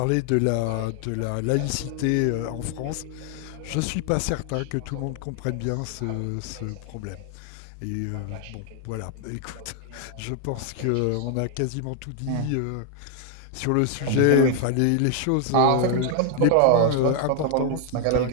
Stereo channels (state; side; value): different; both; correlation 0.00